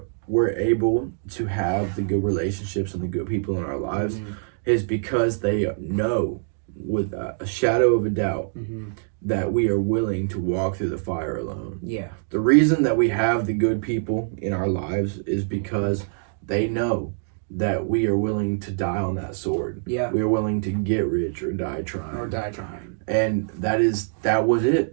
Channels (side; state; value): left; silent; digital silence